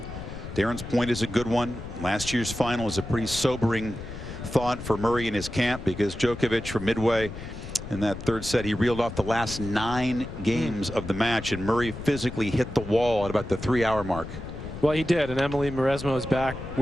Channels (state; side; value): noise; left; rumble, 10 dB below the sound